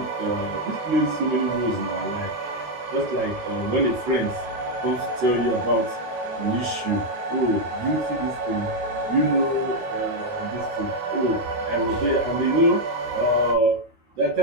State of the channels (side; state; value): left; late; 13 ms